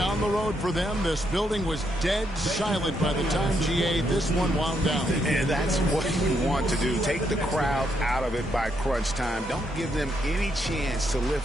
on the road for them. This building was dead silent by the time, GA, this one wound down. And that's what you want to do. Take the crowd out of it by crunch time. Don't give them any chance to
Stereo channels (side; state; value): both; normal; correlation 0.77